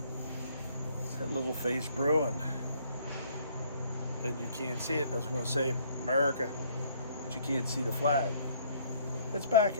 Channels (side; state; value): both; inverted; correlation -0.62